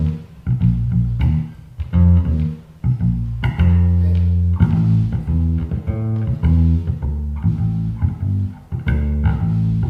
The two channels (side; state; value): both; identical; correlation 1.00